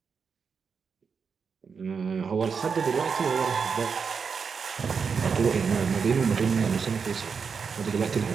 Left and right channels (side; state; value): left; quieter; 5.8 dB